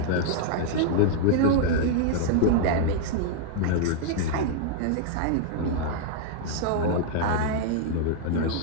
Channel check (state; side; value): different; both; correlation -0.01